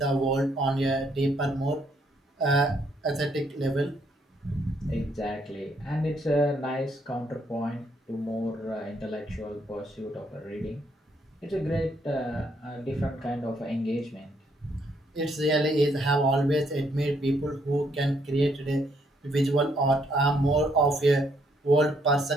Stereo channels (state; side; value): normal; both; correlation 0.71